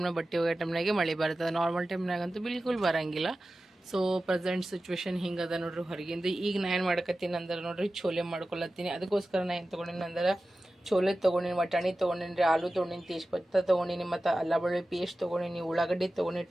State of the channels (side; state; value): both; normal; correlation 0.95